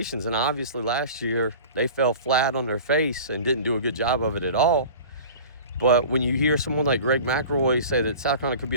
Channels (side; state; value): both; inverted; correlation -0.40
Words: And obviously last year they fell flat on their face and didn't do a good job of it at all. But when you hear someone like Greg McElroy say that South Carolina could be